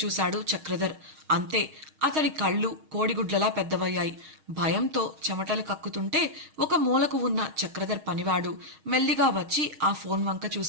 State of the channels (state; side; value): late; left; 6.4 ms